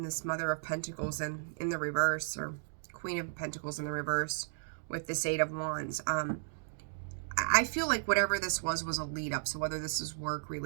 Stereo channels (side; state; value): left; silent; digital silence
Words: this Mother of Pentacles in the reverse, or Queen of Pentacles in the reverse with this Eight of Wands. I feel like whatever this was a lead up. So whether this is work,